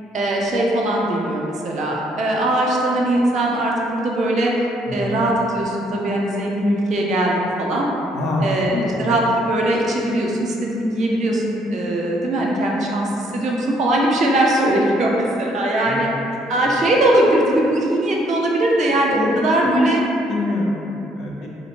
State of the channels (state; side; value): normal; both; correlation 0.67